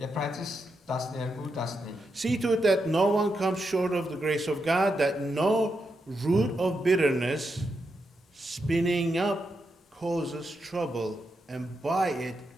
Եբրայեցիս 12:15 See to it that no one comes short of the grace of God, that no root of bitterness spinning up causes trouble, and by it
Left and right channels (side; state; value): both; normal; correlation 0.84